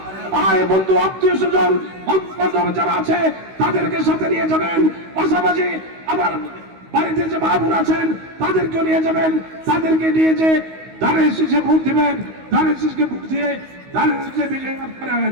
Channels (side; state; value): left; late; 16 ms